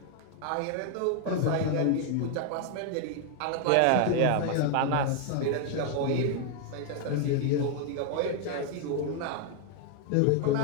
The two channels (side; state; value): both; different; correlation 0.00